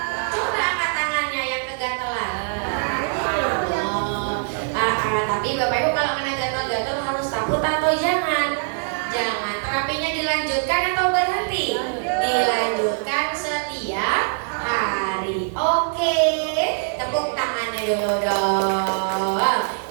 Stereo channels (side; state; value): left; silent; digital silence